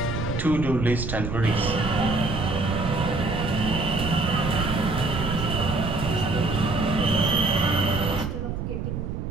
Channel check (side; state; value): right; noise; rumble, 4 dB below the sound